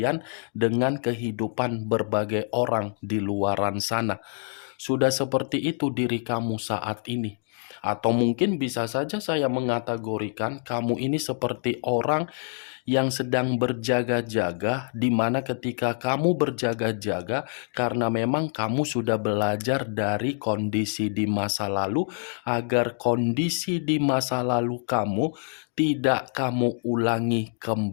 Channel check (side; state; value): right; silent; 61 dB below the other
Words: dengan kehidupan berbagai orang di luaran sana. Sudah seperti itu diri kamu saat ini. Atau mungkin bisa saja saya mengategorikan kamu ini seperti orang yang sedang berjaga-jaga, di mana ketika kamu berjaga-jaga karena memang kamu sudah belajar dari kondisi di masa lalu, agar kondisi di masa lalu kamu tidak kamu ulangi